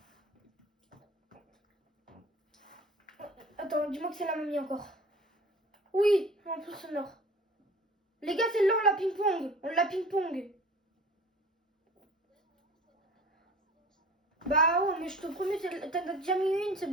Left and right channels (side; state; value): both; normal; correlation 0.43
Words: Attends, dis-moi que c'est la mamie encore. Oui, en plus sonore. Les gars, celle-là, on la ping-pong. On la ping-pong. Bah ouais, mais je te promets, t'en as déjà mis une, c'est